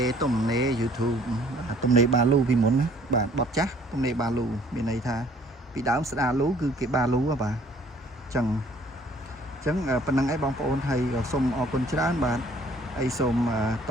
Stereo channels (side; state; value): both; normal; correlation 0.57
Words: ទំនេ YouTube ទំនេបាលូពីមុនណាបាទបត់ចាស់ទំនេបាលូមានន័យថាពីដើមស្ដាលូគឺគេបាលូបាទអញ្ចឹង ចឹងប៉ុណ្ណឹងឯងបងប្អូនហើយសូមអរគុណច្រើនបាទហើយសូមត